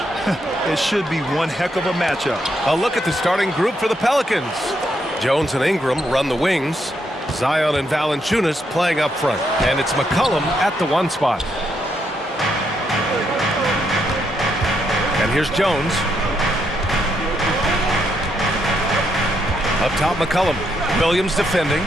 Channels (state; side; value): normal; both; correlation 0.77